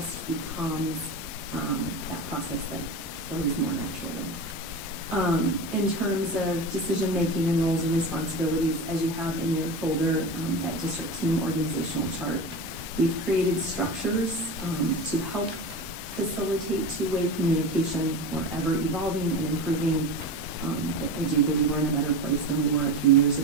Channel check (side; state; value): both; normal; correlation 0.27